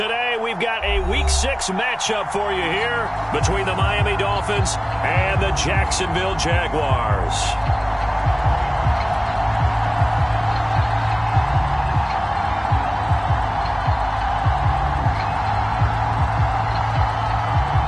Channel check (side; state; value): both; identical; correlation 1.00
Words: we've got a Week 6 matchup for you here between the Miami Dolphins and the Jacksonville Jaguars.